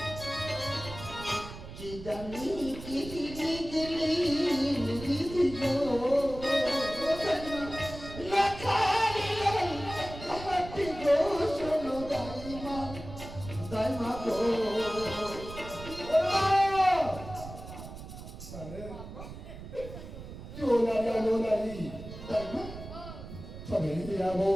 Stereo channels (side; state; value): right; noise; rumble, 12 dB below the sound